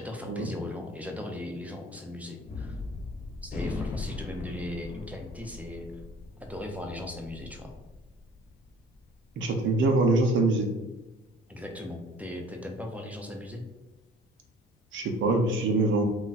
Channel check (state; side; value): normal; both; correlation 0.48